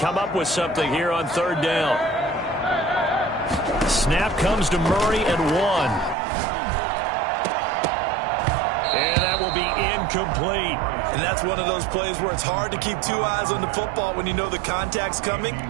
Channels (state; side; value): drops out; left; at 6.2 s